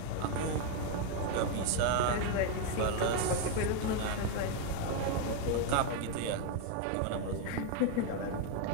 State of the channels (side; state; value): both; different; correlation 0.01